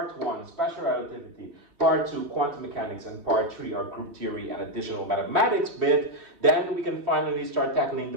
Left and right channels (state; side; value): late; left; 3.1 ms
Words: 1, special relativity, part 2, quantum mechanics, and part 3, our group theory and additional mathematics bit, then we can finally start tackling